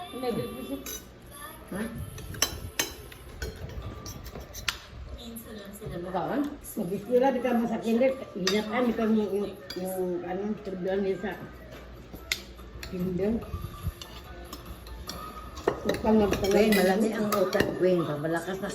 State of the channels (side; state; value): both; identical; correlation 1.00